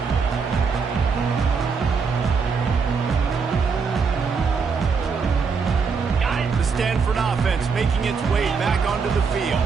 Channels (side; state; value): left; quieter; 5.4 dB